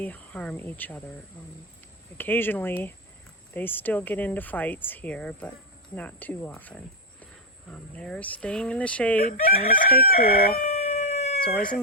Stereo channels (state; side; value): normal; both; correlation 0.01